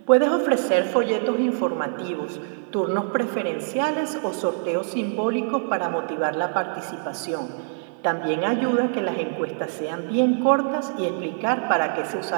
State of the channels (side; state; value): left; silent; digital silence